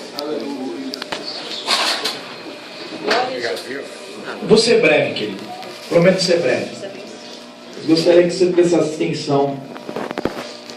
Vou ser breve, querido. Prometo ser breve. Gostaria que você prestasse atenção.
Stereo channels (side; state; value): both; identical; correlation 1.00